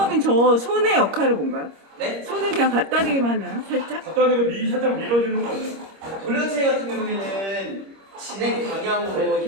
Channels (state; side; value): late; left; 26 ms